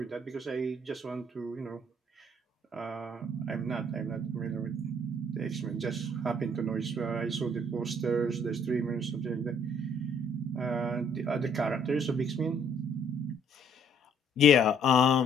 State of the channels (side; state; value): both; normal; correlation 0.62